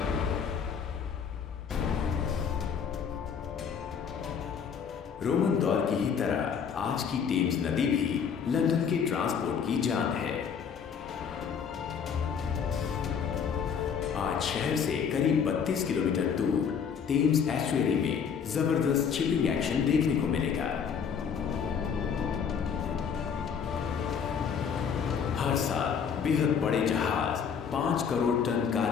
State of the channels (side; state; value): right; quieter; 6.9 dB